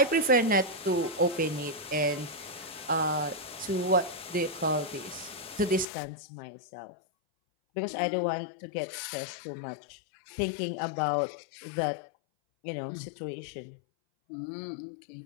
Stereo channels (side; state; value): right; drops out; at 5.9 s